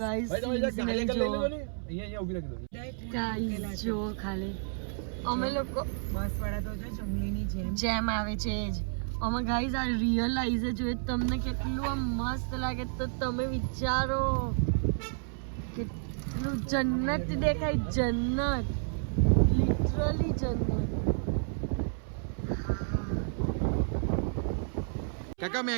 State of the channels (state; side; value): silent; left; 57 dB below the other